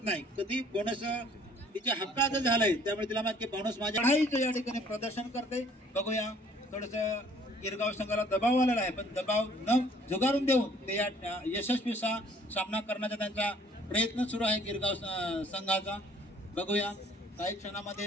नाही. कधी बोनस तिच्या हक्कात झालंय त्यामुळे तिला माहिती बोनस माझ्या चढाईचं या ठिकाणी प्रदर्शन करते. बघूया थोडस गिरगाव संघाला दबाव आलेला आहे पण दबाव न झुगारून देऊन ते या यशस्वी सामना करण्याचा त्यांचा प्रयत्न सुरू आहे गिरगाव संघाचा. बघूया काही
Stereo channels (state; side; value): normal; both; correlation 0.57